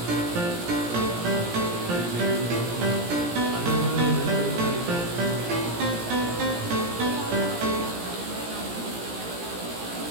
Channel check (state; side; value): late; left; 17 ms